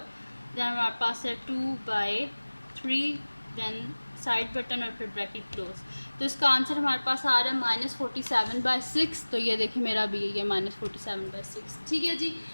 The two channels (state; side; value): inverted; both; correlation -1.00